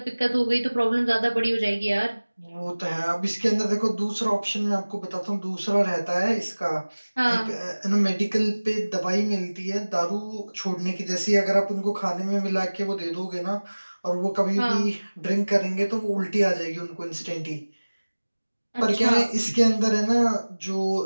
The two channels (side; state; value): both; inverted; correlation -1.00